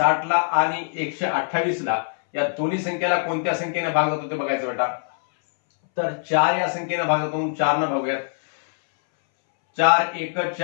ला आणि 128 ला, या दोन्ही संख्येला कोणत्या संख्येने भाग जातो ते बघायचं बेटा. तर 4 या संख्येने भाग जातो, 4 न भागूयात. 4 1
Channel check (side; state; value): right; silent; 62 dB below the other